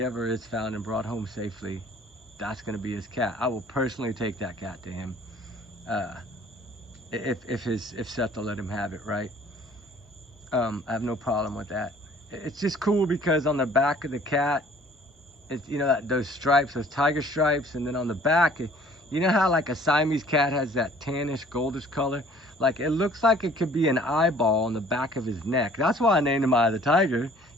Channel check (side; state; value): both; normal; correlation 0.54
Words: ever is found and brought home safely, that's going to be his cat. I will personally take that cat to him if Seth will let him have it, right? I have no problem with that. It's just cool because on the back of the cat, it's, you know, those stripes, those tiger stripes, and then on the back, you know how like a Siamese cat has that tannish, goldish color? Like it looks like it could be an eyeball on the back of his neck. That's why I named him Eye of the Tiger.